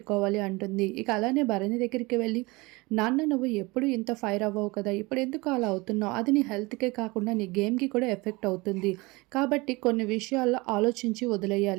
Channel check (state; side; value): quieter; left; 24.0 dB